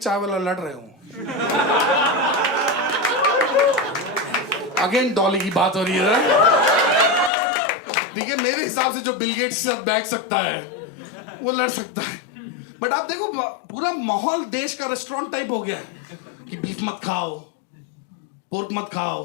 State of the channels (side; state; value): right; drops out; at 7.3 s